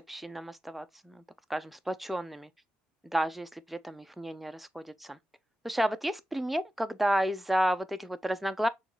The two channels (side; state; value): both; normal; correlation 0.93